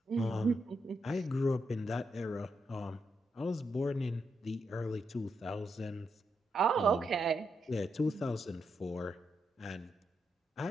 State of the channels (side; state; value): both; normal; correlation 0.82